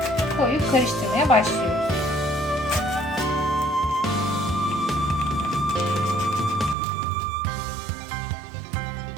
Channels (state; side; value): drops out; left; at 6.8 s